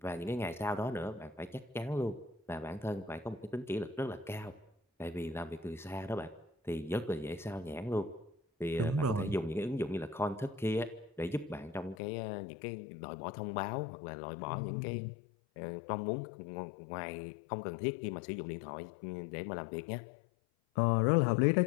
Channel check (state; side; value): drops out; right; at 12.0 s